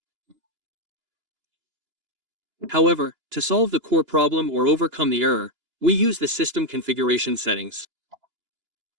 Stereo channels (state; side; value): late; left; 2.9 ms